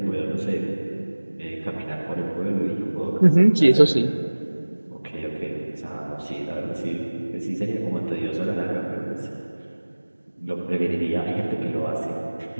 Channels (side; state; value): both; inverted; correlation -1.00